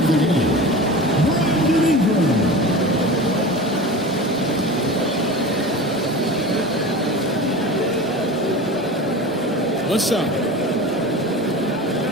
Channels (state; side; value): normal; both; correlation 0.32